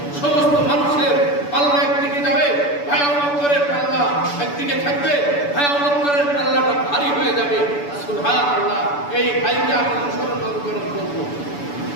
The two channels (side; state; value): right; late; 6.9 ms